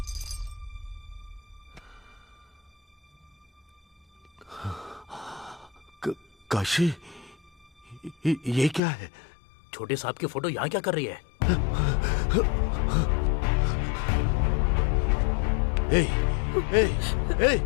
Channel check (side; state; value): right; drops out; at 8.8 s